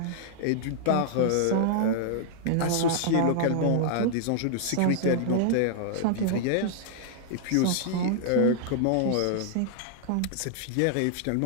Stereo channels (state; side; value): different; both; correlation -0.01